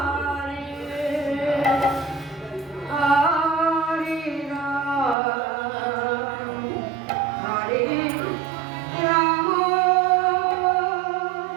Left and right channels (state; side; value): drops out; left; at 5.2 s